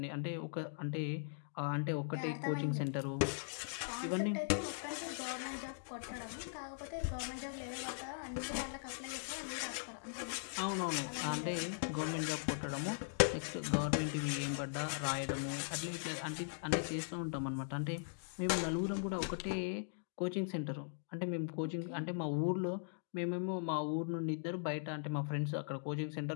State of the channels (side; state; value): right; silent; digital silence